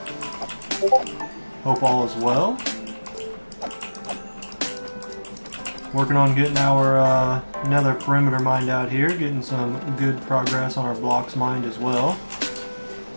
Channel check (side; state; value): both; inverted; correlation -1.00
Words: Hope all is well. Working on getting our nether perimeter mined out here, getting some good progress on our blocks mined as well.